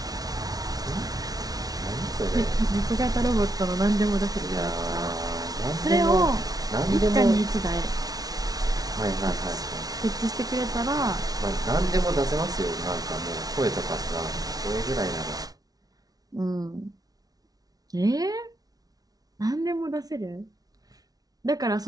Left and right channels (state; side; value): late; left; 0.18 ms